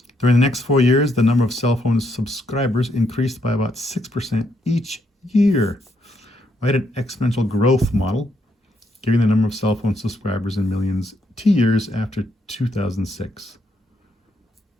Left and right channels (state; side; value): normal; both; correlation 0.76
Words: During the next 4 years, the number of cell phone subscribers increased by about 6% each year. Write an exponential growth model, giving the number of cell phone subscribers in millions T years after 2006.